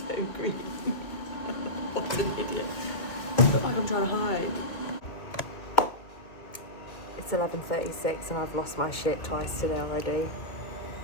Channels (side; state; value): right; late; 2.3 ms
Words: green. What an idiot. I look like I'm trying to hide. It's 11:36 and I've lost my shit twice today already.